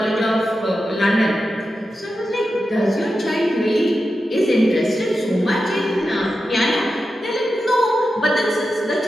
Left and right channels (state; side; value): normal; both; correlation 0.90